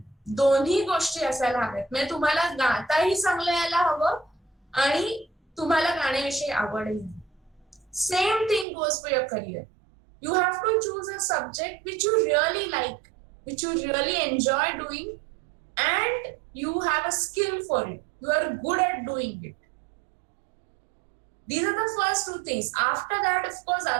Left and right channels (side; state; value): left; drops out; at 8.7 s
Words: दोन्ही गोष्टी असायला हव्यात. म्हणजे तुम्हाला गाताही चांगलं यायला हवं आणि तुम्हाला गाण्याविषयी आवडही. Same thing goes for your career. You have to choose a subject which you really like, which you really enjoy doing, and you have a skill for it. You are good at doing it. These are the first 2 things. After that, of course,